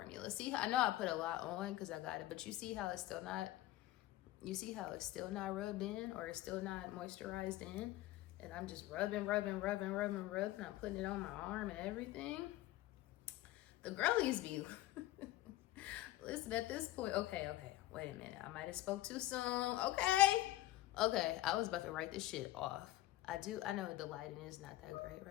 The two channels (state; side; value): quieter; right; 15.9 dB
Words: See, I know I put a lot on because I got it, but you see how it's still not, rubbed in, or it's still not moisturized in. And I'm just rubbing. I'm putting it on my arm and everything. The girlies be, listen, at this point, okay, wait a minute. I might have spoke too soon. Okay, I was about to write this shit off. I know the lighting is not that great